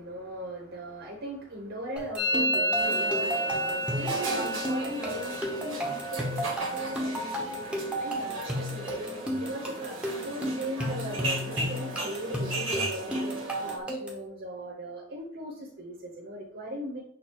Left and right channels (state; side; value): normal; both; correlation 0.03